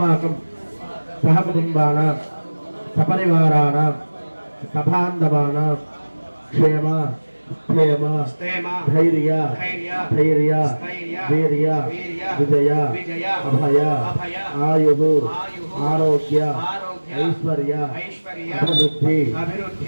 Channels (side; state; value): both; inverted; correlation -1.00